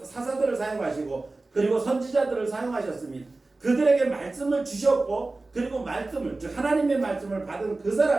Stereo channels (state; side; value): quieter; left; 3.3 dB